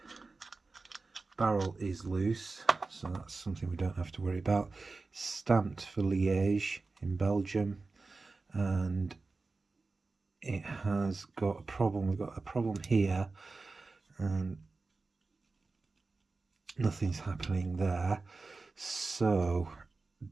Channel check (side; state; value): left; quieter; 3.8 dB